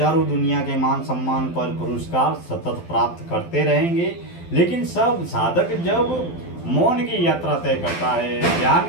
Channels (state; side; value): late; right; 12 ms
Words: दुनिया के मान, सम्मान, पद, पुरस्कार सतत प्राप्त करते रहेंगे। लेकिन सब साधक जब मौन की यात्रा तय करता है, ज्ञान